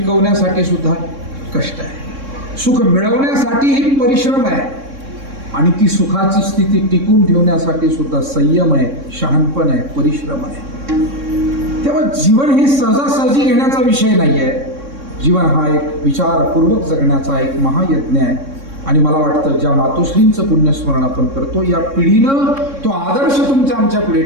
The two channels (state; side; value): late; left; 3.6 ms